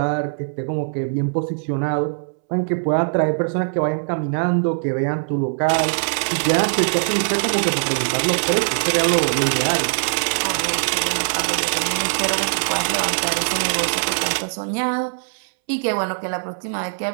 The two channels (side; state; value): left; silent; 65 dB below the other